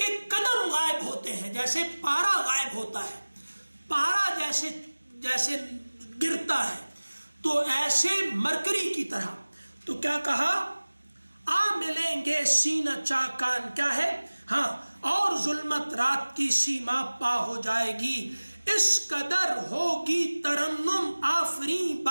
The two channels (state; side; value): inverted; both; correlation -1.00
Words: قدم غائب ہوتے ہیں، جیسے پارا غائب ہوتا ہے، پارا جیسے گرتا ہے، تو ایسے مرکری کی طرح۔ تو کیا کہا، آ ملیں گے سینہ چاکان، کیا ہے، ہاں، اور ظلمت رات کی سیما پا ہو جائے گی، اس قدر ہوگی ترنم آفریں